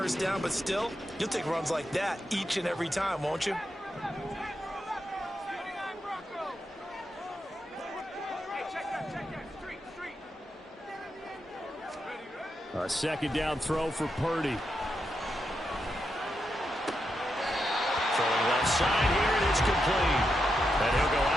down, but still, you'll take runs like that each and every time, won't you? A second down throw for Purdy. Throwing left side here, and it's complete. And he'll go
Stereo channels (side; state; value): both; normal; correlation 0.85